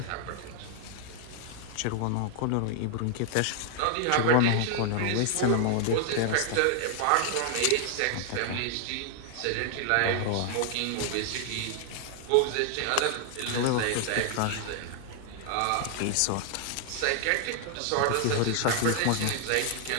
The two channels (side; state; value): both; different; correlation 0.00